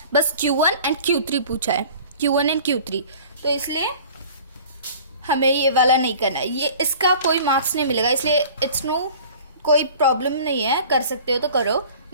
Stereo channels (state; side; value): inverted; both; correlation -0.45